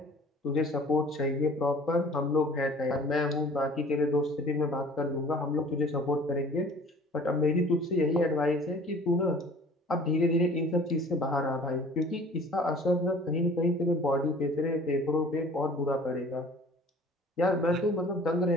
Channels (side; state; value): both; normal; correlation 0.48